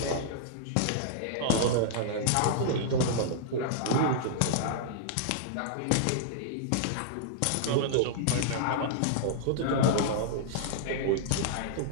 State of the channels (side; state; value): both; different; correlation -0.01